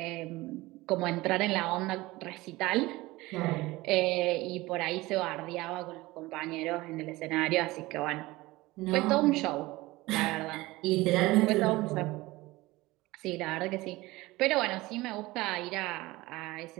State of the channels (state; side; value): quieter; left; 20.0 dB